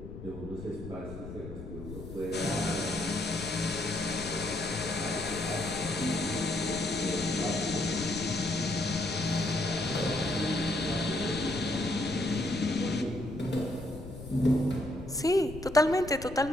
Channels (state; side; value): noise; left; rumble, 11 dB below the sound